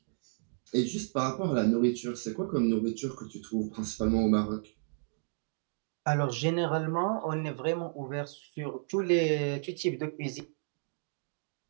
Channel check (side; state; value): left; silent; digital silence